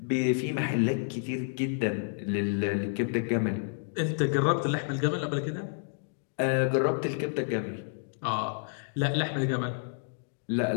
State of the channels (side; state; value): right; silent; digital silence